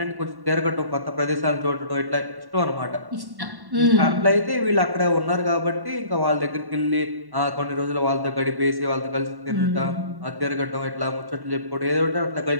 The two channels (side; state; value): left; late; 1.1 ms